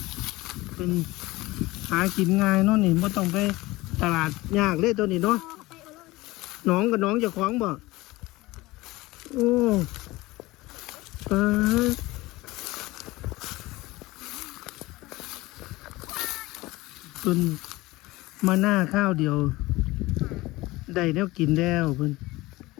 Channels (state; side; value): quieter; right; 20.0 dB